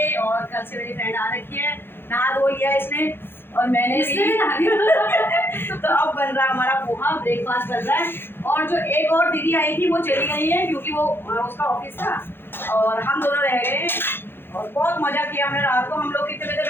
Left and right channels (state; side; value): late; right; 0.10 ms